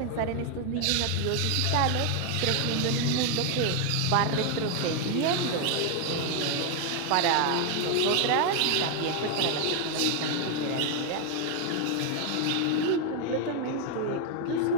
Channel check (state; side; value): different; both; correlation 0.01